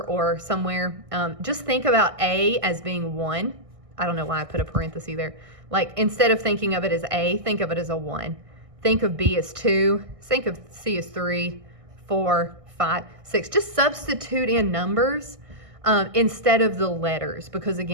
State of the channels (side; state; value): left; late; 1.6 ms